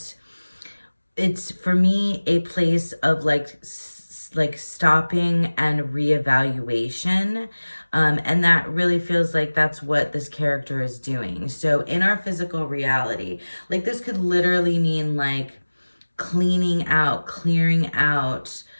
it's for me a place of like stopping and reevaluation. And that really feels like that's what this character is doing. So in our physical reality, like this could literally mean like clearing out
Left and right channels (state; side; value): inverted; both; correlation -1.00